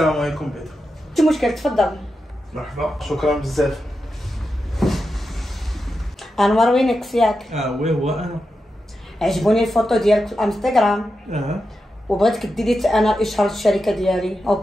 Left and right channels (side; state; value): both; normal; correlation 0.89